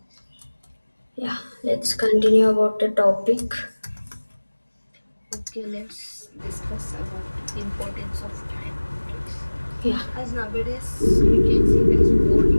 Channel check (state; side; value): inverted; both; correlation -1.00